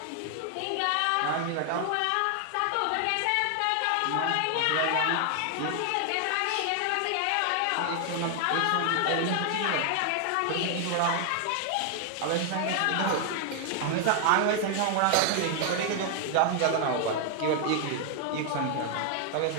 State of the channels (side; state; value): both; different; correlation 0.00